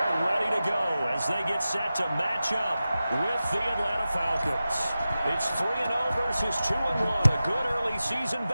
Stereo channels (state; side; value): inverted; both; correlation -0.94